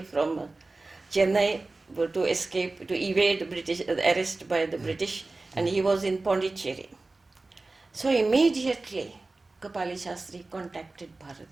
from Chennai to escape, to evade British arrest by the British, and he was in Pondicherry. So immediately Kapali Shastri contacted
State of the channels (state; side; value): quieter; left; 3.3 dB